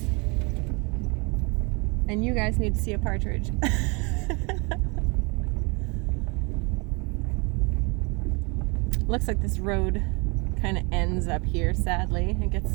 And you guys need to see a partridge. Looks like this road kind of ends up here, sadly. It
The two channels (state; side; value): quieter; left; 30.0 dB